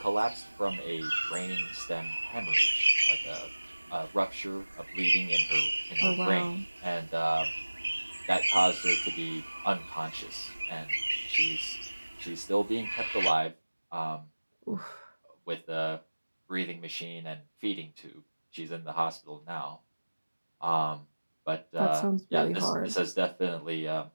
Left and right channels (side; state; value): both; inverted; correlation -1.00